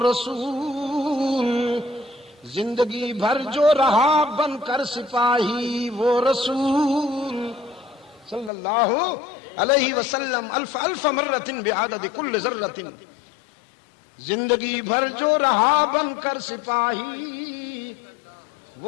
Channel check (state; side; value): drops out; right; at 8.5 s